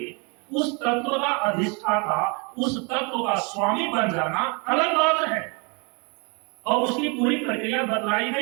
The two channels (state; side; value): quieter; left; 32.4 dB